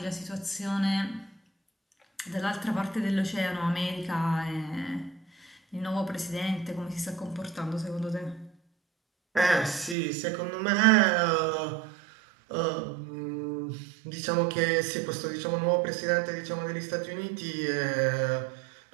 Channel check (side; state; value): left; drops out; at 10.0 s